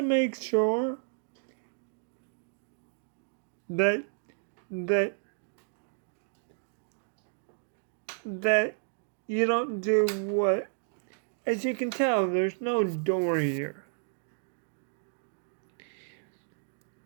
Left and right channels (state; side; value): silent; left; digital silence